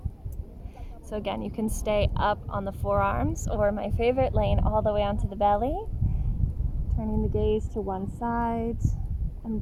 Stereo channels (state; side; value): identical; both; correlation 1.00